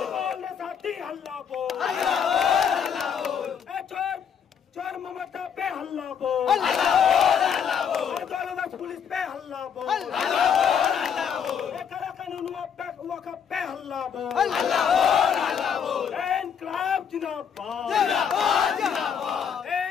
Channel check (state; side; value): quieter; right; 7.5 dB